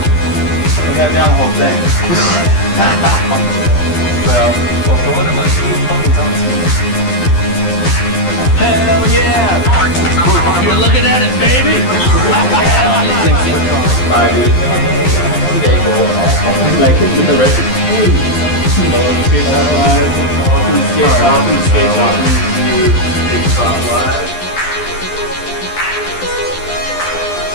I got down the whole thing. Well, what am I hell yeah! You're looking at it, baby! Like with the rest of Welcome to Skatetalk Live.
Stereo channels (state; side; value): late; right; 12 ms